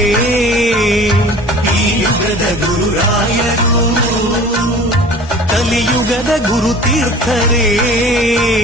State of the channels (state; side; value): noise; right; rumble, 19 dB below the sound